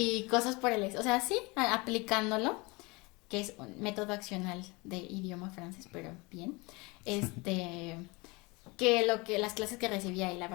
cosas por el o sea, sí, aplicándolo, que es un método accional de idioma francés, pero bien, que las clases que recibía, y la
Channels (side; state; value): right; quieter; 25.9 dB